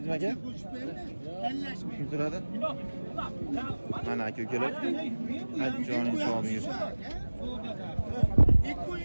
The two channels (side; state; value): both; inverted; correlation -1.00